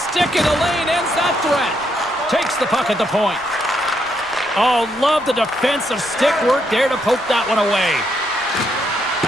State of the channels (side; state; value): right; noise; rumble, 27 dB below the sound